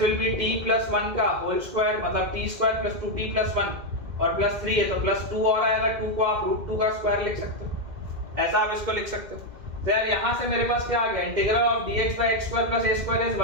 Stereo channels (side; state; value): left; late; 2.1 ms